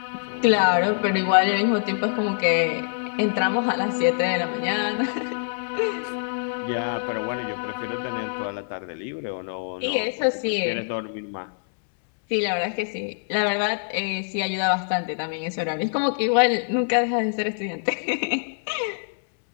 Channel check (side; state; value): right; silent; 62 dB below the other